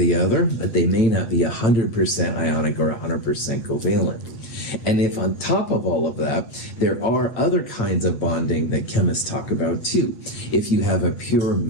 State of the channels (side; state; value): right; late; 8.8 ms